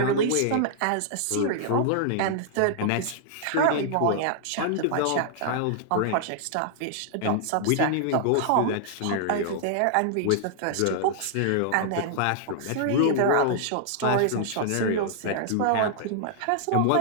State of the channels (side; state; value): both; different; correlation -0.01